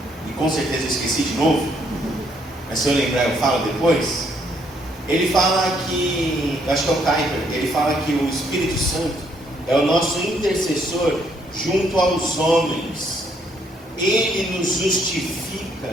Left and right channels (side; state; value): both; normal; correlation 0.70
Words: e com certeza eu esqueci de novo, mas se eu lembrar eu falo depois. Ele fala que, acho que é o Kuyper, ele fala que o Espírito Santo é o nosso intercessor junto aos homens. Ele nos